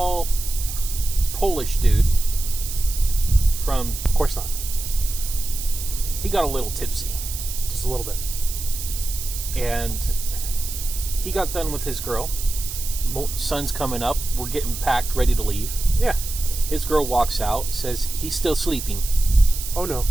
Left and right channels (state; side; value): noise; right; hiss, 8 dB below the sound